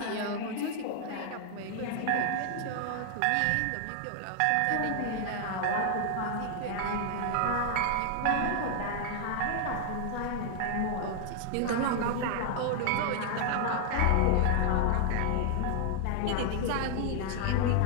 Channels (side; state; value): both; different; correlation 0.00